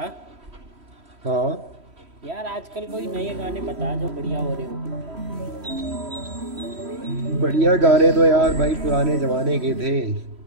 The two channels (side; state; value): left; late; 3.1 ms